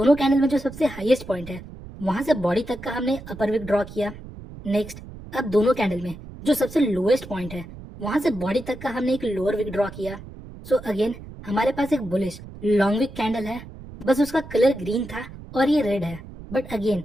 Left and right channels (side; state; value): right; noise; rumble, 15 dB below the sound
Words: कैंडल में जो सबसे हाईएस्ट पॉइंट है वहां से बॉडी तक का हमने अपर विक ड्रॉ किया। नेक्स्ट, अब दोनों कैंडल में जो सबसे लोएस्ट पॉइंट है वहां से बॉडी तक का हमने एक लोअर विक ड्रॉ किया। सो अगेन हमारे पास एक बुलिश लॉन्ग विक कैंडल है, बस उसका कलर ग्रीन था और ये रेड है। But again